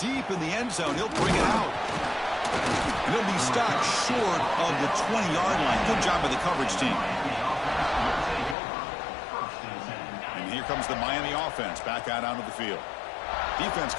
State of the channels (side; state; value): right; drops out; at 8.6 s